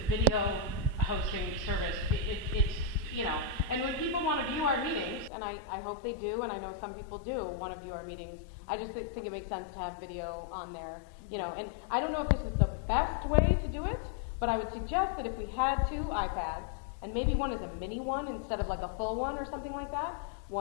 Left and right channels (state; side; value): drops out; right; at 5.3 s